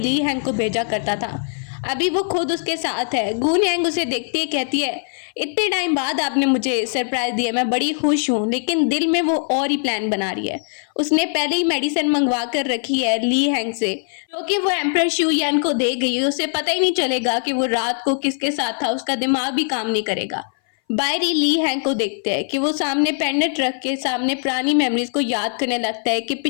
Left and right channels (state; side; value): silent; right; 60 dB below the other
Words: हैंग को भेजा करता था, अभी वो खुद उसके साथ है। गून यांग उसे देखती है, कहती है इतने टाइम बाद आपने मुझे सरप्राइज दिया, मैं बड़ी खुश हूँ। लेकिन दिल में वो और ही प्लान बना रही है। उसने पहले ही मेडिसिन मंगवा कर रखी है ली हैंग से, क्योंकि वो एम्परर शू यान को दे गई है। उसे पता ही नहीं चलेगा कि वो रात को किसके साथ था, उसका दिमाग भी काम नहीं करेगा। बाहर ही ली हैंग को देखते हैं कि वो सामने पेंडेंट रख के सामने पुरानी मेमोरीज को याद करने लगता है कि